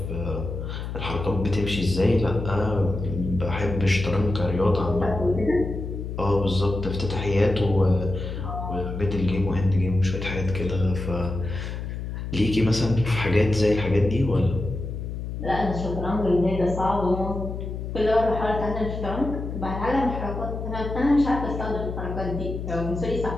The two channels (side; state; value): left; noise; hum, 6 dB below the sound